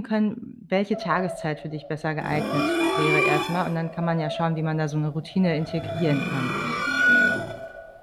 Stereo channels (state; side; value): identical; both; correlation 1.00